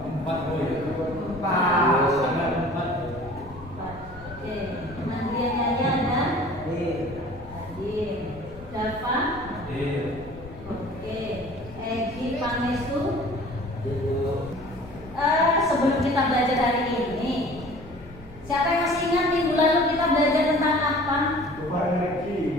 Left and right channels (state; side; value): noise; left; rumble, 19 dB below the sound